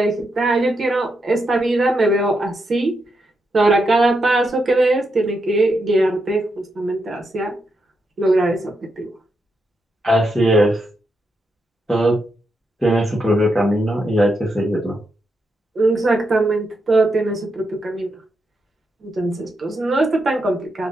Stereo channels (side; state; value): both; normal; correlation 0.83